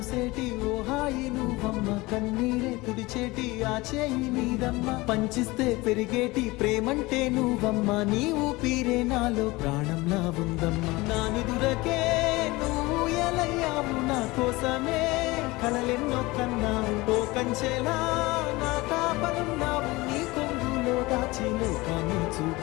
ఓ హాయి నువ్వమ్మ, కన్నీరే తుడిచేటి ఆ చేయి నీదమ్మ. పంచిస్తే పెరిగేటి ప్రేమంటే నువ్వమ్మ, నీ ఊపిరే నాలో ప్రాణంలా ఉందమ్మా. నా నిదురకే నువ్వు ఎలయ్యావు, నా కోసమే కలలెన్నో కన్నావు. ఓ కంచెలా నా కాపలున్నావు, నీ కొంగులో దాచి లోకాన్ని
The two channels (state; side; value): quieter; right; 21.7 dB